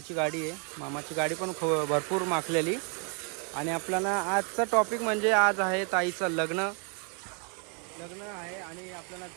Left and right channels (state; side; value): quieter; left; 38.4 dB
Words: गाडी आहे. मामाची गाडी पण भरपूर माखलेली. आणि आपल्याला आजचा टॉपिक म्हणजे आज आहे ताईचं लग्न आहे आणि आपल्याला